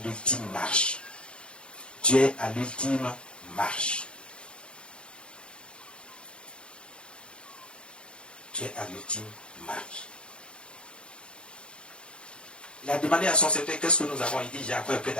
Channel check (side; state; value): right; late; 0.055 ms